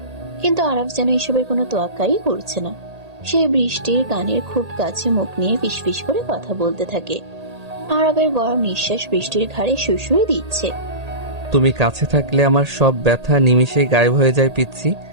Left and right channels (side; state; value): left; late; 1.8 ms